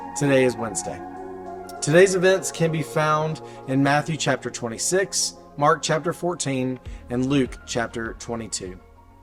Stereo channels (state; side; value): identical; both; correlation 1.00